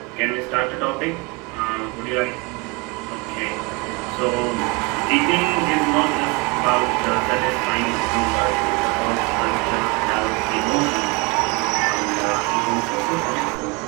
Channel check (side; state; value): left; quieter; 27.5 dB